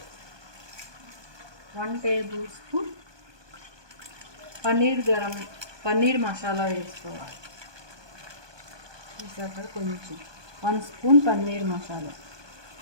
1 టేబుల్ స్పూన్ పన్నీర్ మసాలా వేసుకోవాలి. అక్కడ కొంచెం 1 స్పూన్ పన్నీర్ మసాలా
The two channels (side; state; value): left; late; 1.2 ms